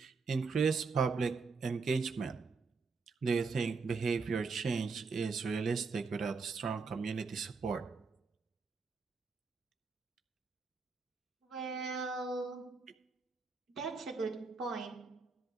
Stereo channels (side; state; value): left; quieter; 4.7 dB